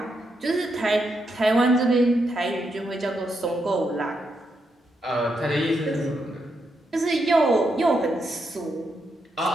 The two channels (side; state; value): both; normal; correlation 0.82